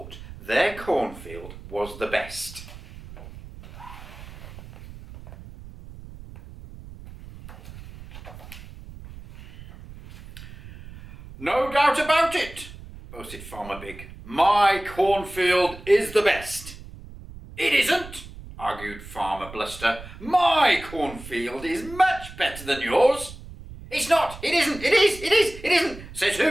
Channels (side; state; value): right; noise; rumble, 16 dB below the sound